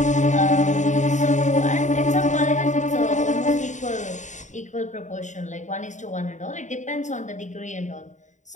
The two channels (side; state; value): right; late; 0.35 ms